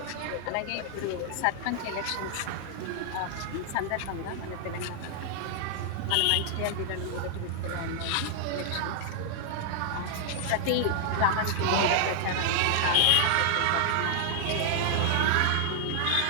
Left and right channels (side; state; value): both; different; correlation 0.00